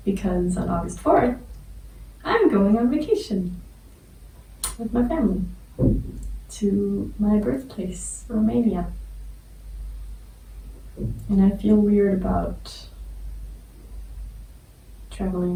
Because on August 4th, I'm going on vacation with my family to my birthplace, Romania. And I feel weird about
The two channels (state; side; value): identical; both; correlation 1.00